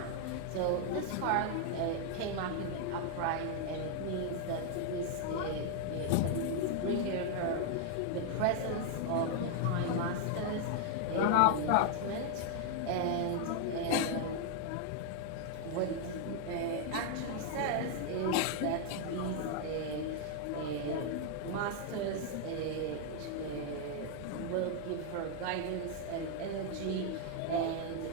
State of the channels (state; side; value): different; both; correlation 0.00